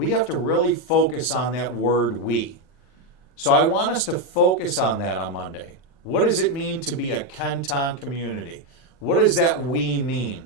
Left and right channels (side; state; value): right; late; 39 ms